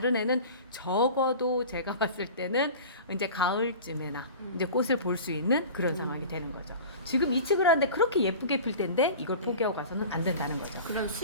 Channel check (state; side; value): inverted; both; correlation -0.37